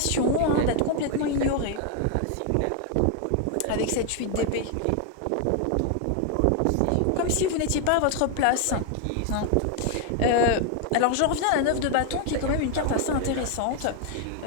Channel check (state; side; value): different; both; correlation 0.01